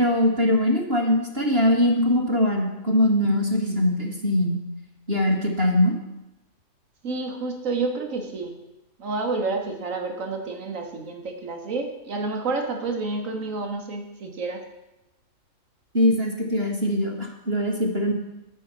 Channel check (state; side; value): late; left; 2.9 ms